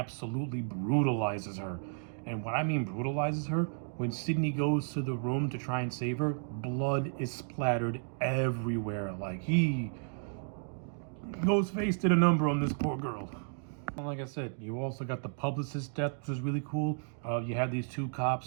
brutalizes her. And what I mean brutalizes her, when Sydney goes to the room to try and save her, blood is splattered everywhere. Like Ghostface did a number on this poor girl. Like I said, you also got the publicist death, which is really cool. You had these two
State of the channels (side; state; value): left; silent; digital silence